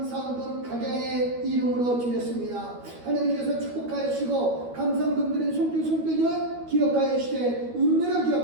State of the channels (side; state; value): left; late; 12 ms